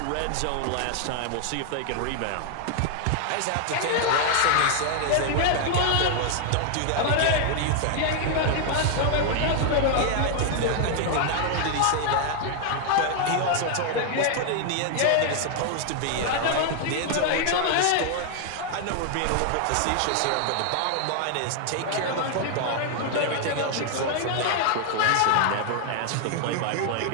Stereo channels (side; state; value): both; different; correlation 0.00